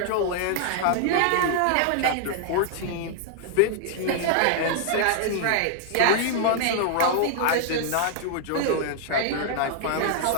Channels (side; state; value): both; different; correlation 0.00